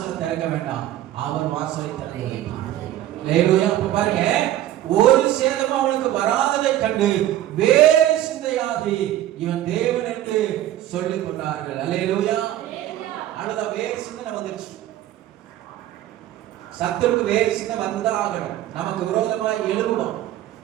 திறக்க வேண்டாம், அவர் வாசலை திறக்க வேண்டும். அப்ப பாருங்க, ஒரு சேதமும் அவனுக்கு வராததை கண்டு வேறு சிந்தையாகி இவன் தேவன் என்று சொல்லிக் கொண்டார்கள். அல்லேலூயா. அழுத வேறு சிந்தனை வந்துருச்சு. சத்துருக்கு வேறு சின்ன வந்துதான் ஆகணும். நமக்கு விரோதமாய் எழுவுவான்.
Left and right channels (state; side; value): quieter; left; 13.2 dB